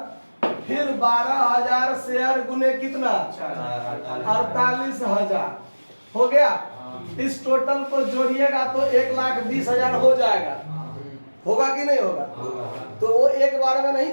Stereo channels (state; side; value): inverted; both; correlation -1.00